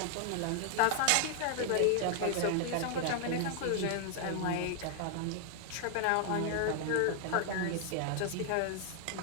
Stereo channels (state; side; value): different; both; correlation 0.00